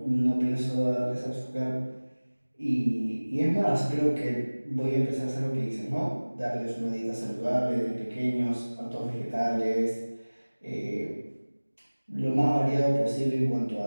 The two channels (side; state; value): both; inverted; correlation -1.00